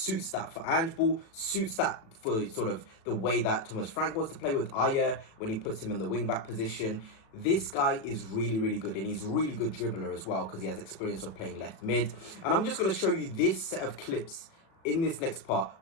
that for Ange Ball, suits that for sort of the way that Thomas Frank wants to play with Ayer when he puts him in the wing-back position. This guy is really, really good, and he's a really good dribbler as well because he has experience of playing left mid. And I'm just going to show you this set of clips in this next part,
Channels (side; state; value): right; late; 37 ms